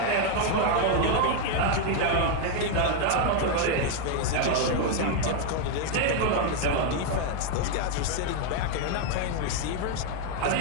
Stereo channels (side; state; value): both; different; correlation 0.01